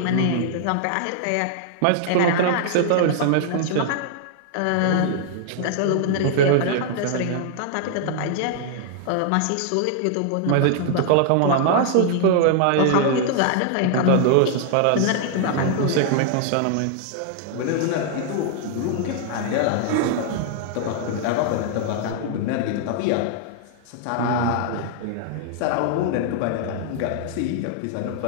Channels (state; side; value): different; both; correlation -0.01